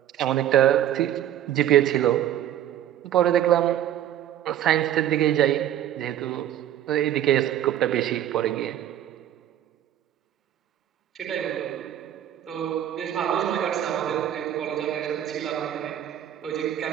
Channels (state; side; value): quieter; left; 11.4 dB